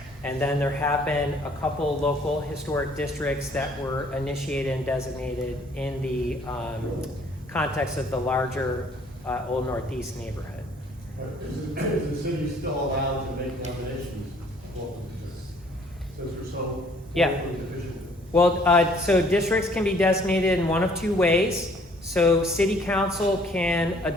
And then there have been a couple local historic districts that were initiated and designated in the context of the larger Old Northeast neighborhood. Is the city still allowed to make nominations? Well, since we're so Yeah. locally deficient. Well, so districts can be designated in one of two ways. So city council can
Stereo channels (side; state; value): both; normal; correlation 0.59